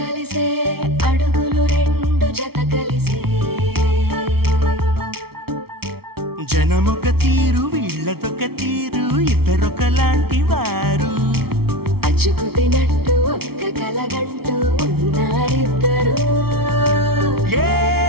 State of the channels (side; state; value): left; late; 0.95 ms